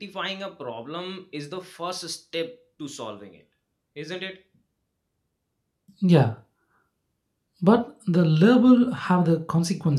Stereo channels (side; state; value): both; identical; correlation 1.00